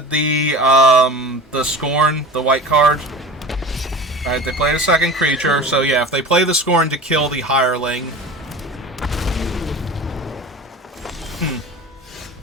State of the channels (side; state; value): both; normal; correlation 0.36